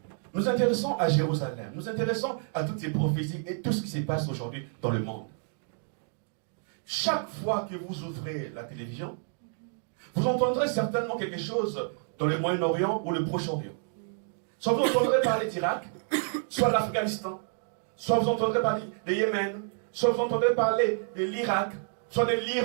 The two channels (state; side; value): silent; left; 58 dB below the other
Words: Nous nous intéressons à Jérusalem. Nous nous intéressons à toutes ces prophéties et tout ce qui se passe aujourd'hui dans le monde. Chaque fois que vous ouvrez la télévision, vous entendrez certainement quelque chose dans le Moyen-Orient ou le Proche-Orient. Soit vous entendrez parler d'Irak, soit de l'Afghanistan, soit vous entendrez parler de Yémen, soit vous entendrez parler de l'Irak, soit de